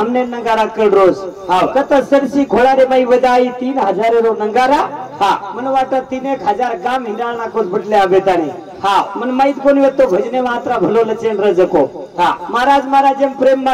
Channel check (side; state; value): both; identical; correlation 1.00